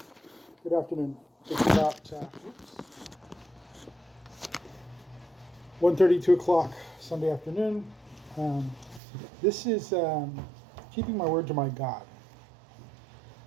afternoon. It's about 1:30, 2 o'clock Sunday afternoon. Um, this is keeping my word to my God.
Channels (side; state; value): left; drops out; at 9.0 s